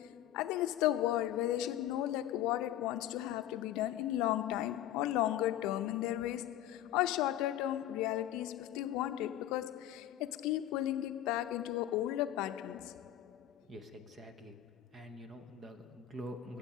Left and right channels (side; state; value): right; quieter; 12.6 dB